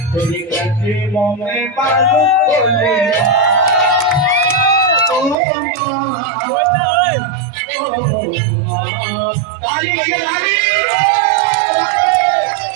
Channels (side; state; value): left; drops out; at 5.4 s